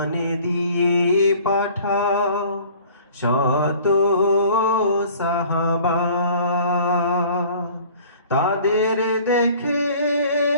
দিয়ে পাঠাও শত সাহাবা, তাদের দেখে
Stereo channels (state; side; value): inverted; both; correlation -0.50